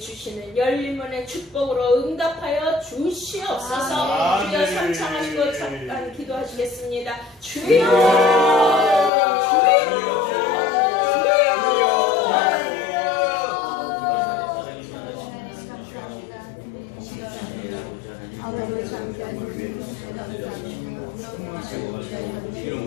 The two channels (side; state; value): right; drops out; at 9.1 s